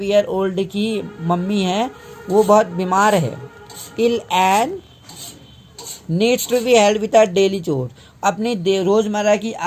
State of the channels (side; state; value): both; identical; correlation 1.00